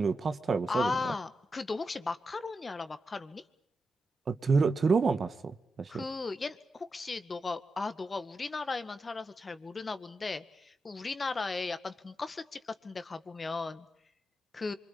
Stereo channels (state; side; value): normal; both; correlation 0.88